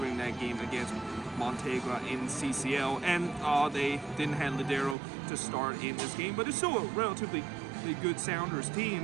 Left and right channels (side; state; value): left; drops out; at 5.0 s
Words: that game against Montegra in CCL, and they didn't have Ladero to start in this game, but it's still a relatively good Sounders